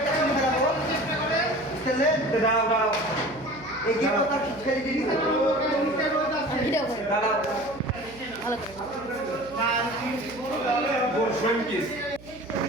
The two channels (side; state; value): right; noise; hum, 20 dB below the sound